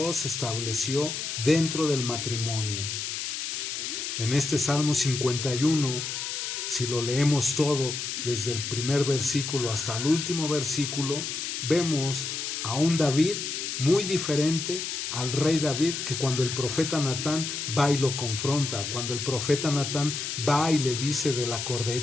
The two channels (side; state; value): left; noise; hiss, 4 dB below the sound